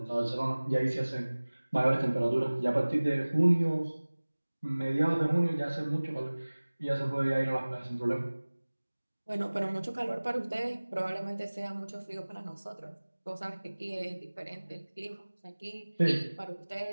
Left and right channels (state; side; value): inverted; both; correlation -1.00